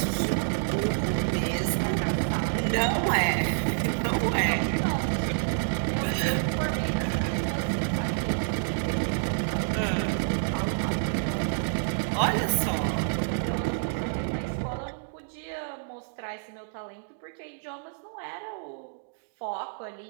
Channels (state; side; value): silent; left; digital silence